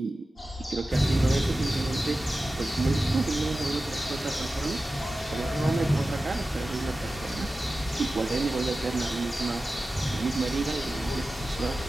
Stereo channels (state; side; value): normal; both; correlation 0.94